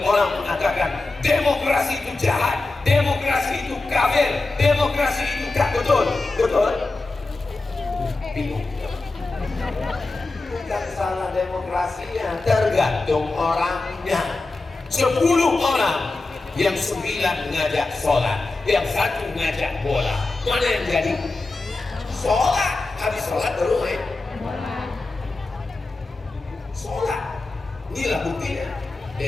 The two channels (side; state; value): right; quieter; 3.3 dB